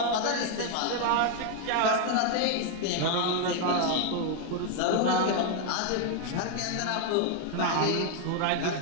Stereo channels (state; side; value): different; both; correlation 0.01